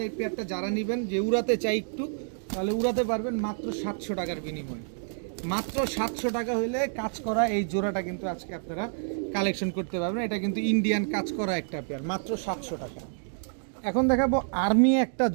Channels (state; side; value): silent; left; digital silence